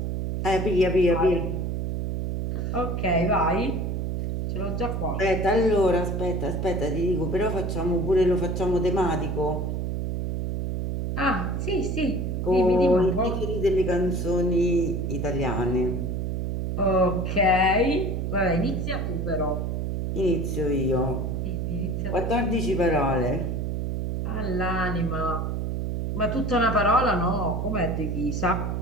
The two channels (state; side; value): noise; right; hum, 1 dB below the sound